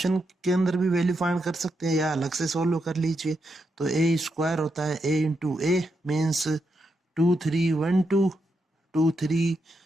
के अंदर भी वैल्यू फाइंड कर सकते हैं या अलग से सोल्व कर लीजिए। तो ए स्क्वायर होता है ए इंटू ए मीन्स 2 3 1 2, 2 3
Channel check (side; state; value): both; normal; correlation 0.83